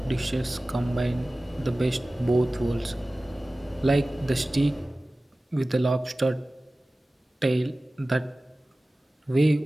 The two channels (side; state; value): both; normal; correlation 0.97